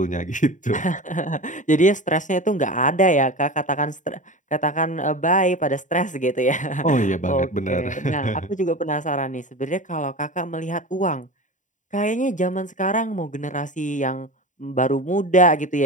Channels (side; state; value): right; late; 0.36 ms